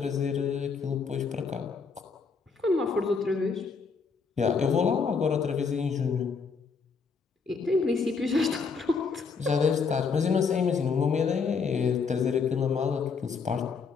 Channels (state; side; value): quieter; right; 5.2 dB